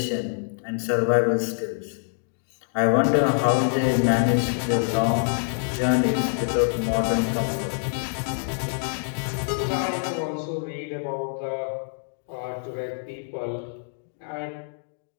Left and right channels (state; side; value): silent; right; digital silence